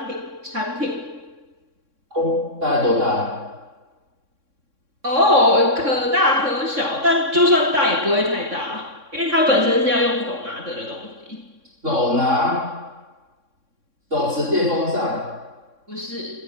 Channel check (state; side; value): late; left; 3.6 ms